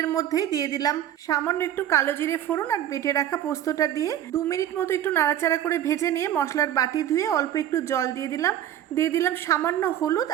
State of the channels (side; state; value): left; quieter; 11.3 dB